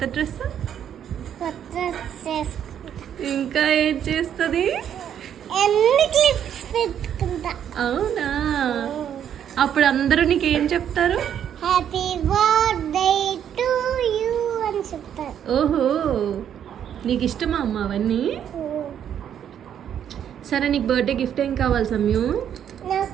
డ్రెస్, కొత్త డ్రెస్ వేసుకుంటా, ఇంకా ఏం చేస్తుంది? ఎన్ని క్లిప్స్ పెట్టుకుంటా. అవునా? అప్పుడు అందరూ నీకు ఏం చెప్తారు? హ్యాపీ బర్త్డే టు యూ అని చెప్తారు. ఓహో, నీకు ఇష్టమా అమ్మ అవన్నీ? సరే, నీకు బర్త్డే గిఫ్ట్ ఏం కావాలి సమయు?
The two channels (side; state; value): left; quieter; 9.4 dB